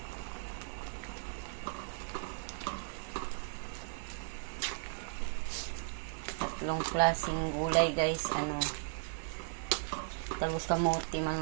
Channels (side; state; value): left; silent; 54 dB below the other